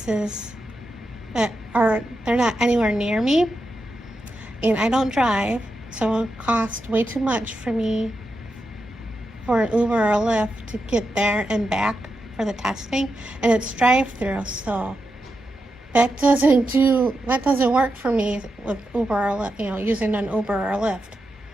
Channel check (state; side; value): normal; both; correlation 0.87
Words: they're not anywhere near me, and I don't drive, so it would cost way too much for me for an Uber or a Lyft to get there and back for the testing, and it's drive-through, so that doesn't work for me with Uber or using an Uber or a Lyft.